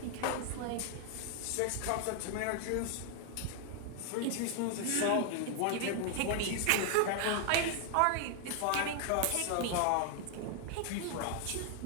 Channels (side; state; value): both; different; correlation 0.00